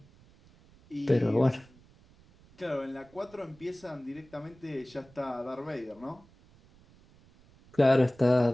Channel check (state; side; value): noise; right; rumble, 27 dB below the sound